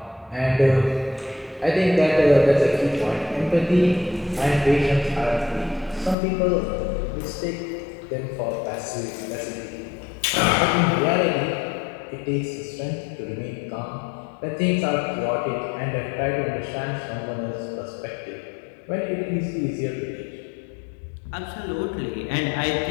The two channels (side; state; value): right; drops out; at 6.2 s